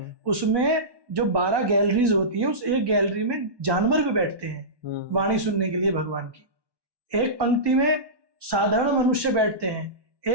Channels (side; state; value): left; late; 1.2 ms